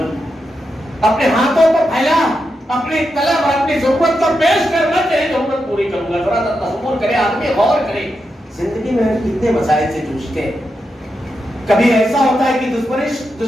اپنے ہاتھوں کو پھیلا, اپنی طلب اور اپنی ضرورت کو پیش کرنا, تیری ضرورت پوری کروں گا. ذرا تصور کرے آدمی, غور کرے, زندگی میں کتنے مسائل سے جوجھتے ہیں. کبھی ایسا ہوتا ہے کہ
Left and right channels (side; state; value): both; normal; correlation 0.86